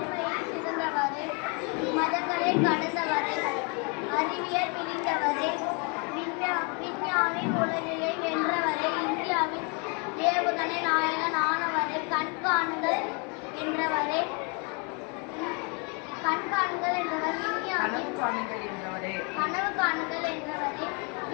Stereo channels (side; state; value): right; quieter; 34.1 dB